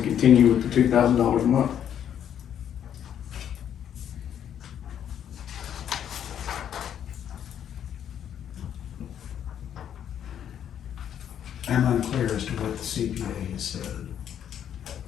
continue with the $2,000 a month. I'm unclear as to what the CPA has said.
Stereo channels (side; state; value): right; quieter; 9.5 dB